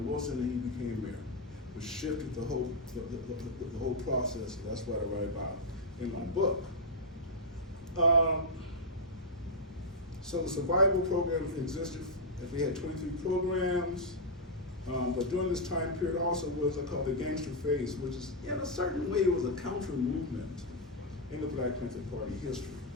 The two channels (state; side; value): normal; both; correlation -0.04